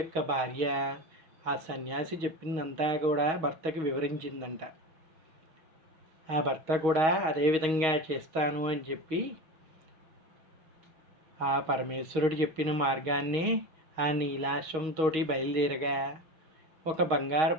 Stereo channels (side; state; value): left; late; 6.3 ms